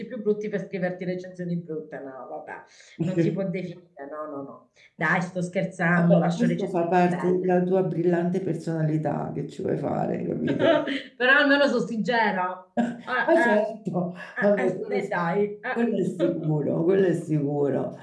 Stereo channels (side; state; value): both; identical; correlation 1.00